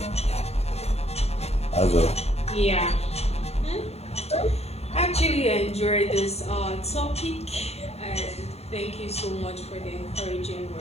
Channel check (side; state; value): right; late; 0.30 ms